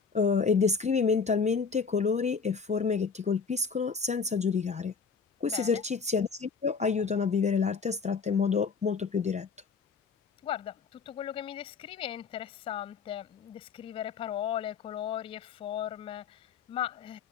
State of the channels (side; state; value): right; quieter; 5.4 dB